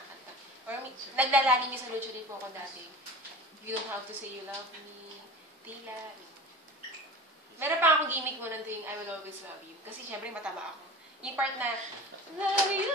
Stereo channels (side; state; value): both; normal; correlation 0.36